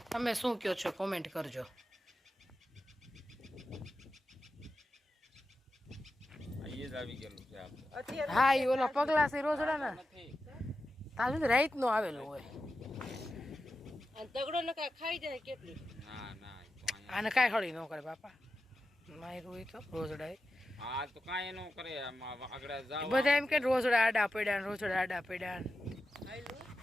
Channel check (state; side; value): normal; both; correlation 0.91